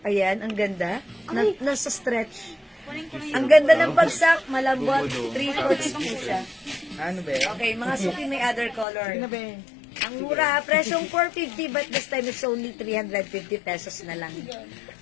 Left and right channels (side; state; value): right; drops out; at 8.8 s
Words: Ayan, ang ganda. Nasa stretch. Ang ganda ng bagsak, malambot, 3/4 po siya. Ano ba? Okay, mga suki may other color. Ano ba? Ang mura, presyong 450 but this time it's only 350 pesos na lang.